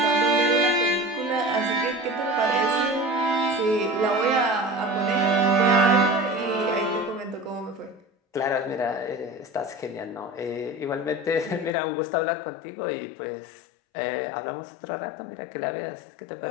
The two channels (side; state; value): right; drops out; at 11.7 s